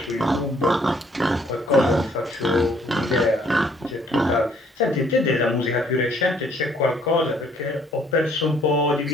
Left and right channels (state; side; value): normal; both; correlation 0.63